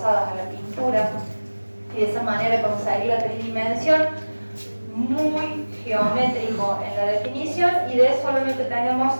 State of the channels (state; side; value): inverted; both; correlation -1.00